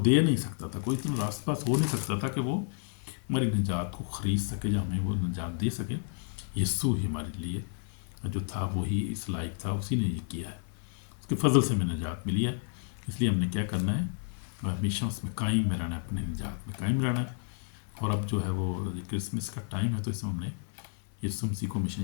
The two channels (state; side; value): silent; right; 57 dB below the other